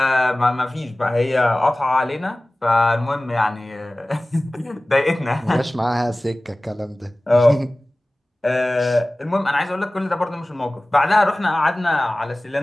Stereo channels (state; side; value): normal; both; correlation 0.98